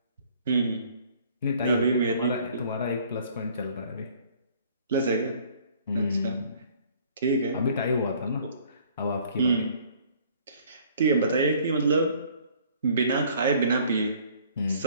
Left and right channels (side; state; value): both; inverted; correlation -0.57